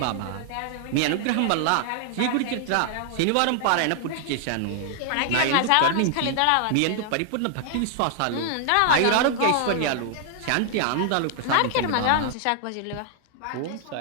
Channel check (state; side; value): different; both; correlation 0.00